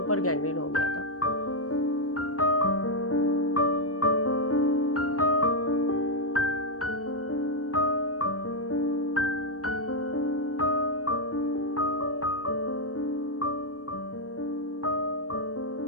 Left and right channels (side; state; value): right; late; 0.66 ms